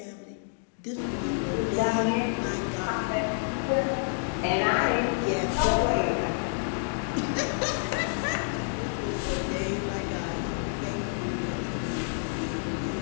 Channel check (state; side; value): silent; right; digital silence